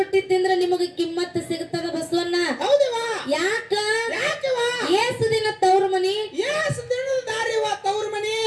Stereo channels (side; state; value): both; identical; correlation 1.00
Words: ತಿಂದ್ರೆ ನಿಮಗೆ ಕಿಮ್ಮತ್ತ ಸಿಗತದ ಬಸವಣ್ಣ. ಹೌದವಾ? ಯಾಕ? ಯಾಕವ? ಏಸು ದಿನ ತವ್ರ ಮನಿ, ಏಸ್ ದಿನದ ದಾರಿವ ತವ್ರ ಮನಿ.